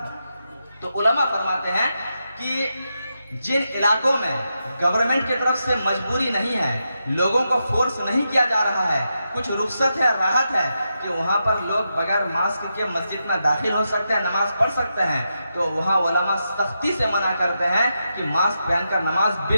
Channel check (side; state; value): both; inverted; correlation -0.86